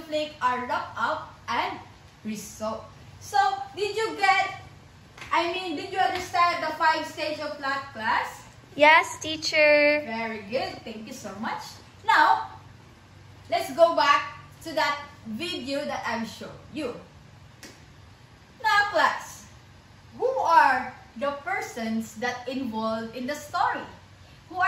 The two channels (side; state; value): both; identical; correlation 1.00